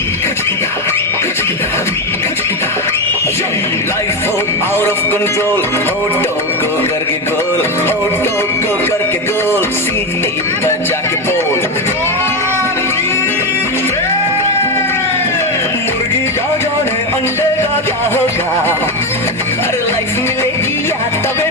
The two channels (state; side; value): normal; both; correlation 0.13